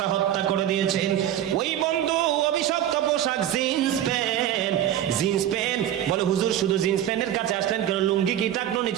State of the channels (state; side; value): quieter; left; 11.5 dB